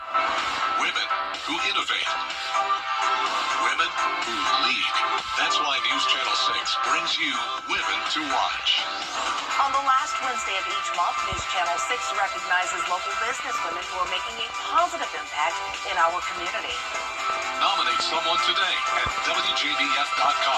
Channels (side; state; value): both; identical; correlation 1.00